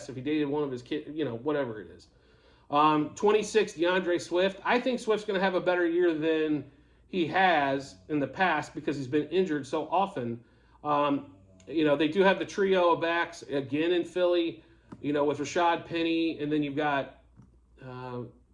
if he dated one of his kids, whatever it is. 26, DeAndre Swift. I think Swift's going to have a better year than he has in the past because he's been injured so often. They do have the trio of backs again in Philly, with Rashad Penny, and then you've got,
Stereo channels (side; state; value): both; identical; correlation 1.00